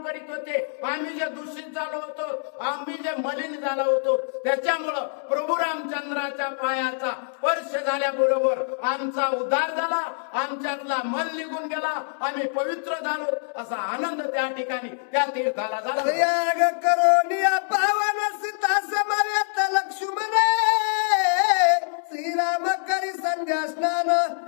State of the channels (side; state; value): right; silent; digital silence